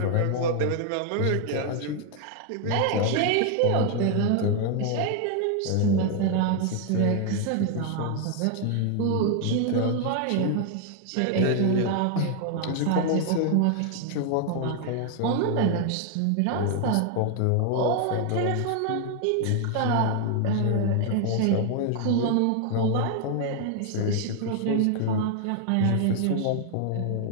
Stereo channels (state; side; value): different; both; correlation 0.00